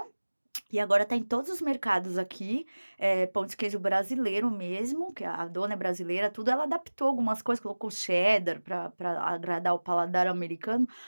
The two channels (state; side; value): inverted; both; correlation -1.00